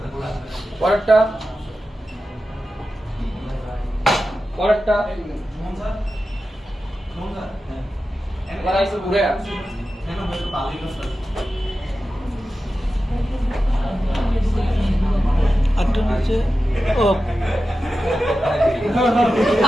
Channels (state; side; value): normal; both; correlation 0.92